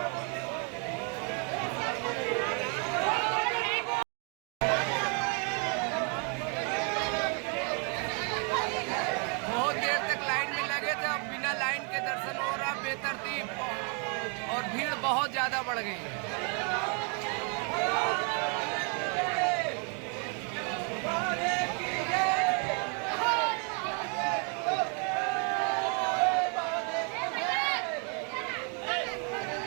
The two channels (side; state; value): left; quieter; 38.1 dB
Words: लाइन के दर्शन हो रहा बेतरतीब, और भीड़ बहुत ज़्यादा बढ़ गई है।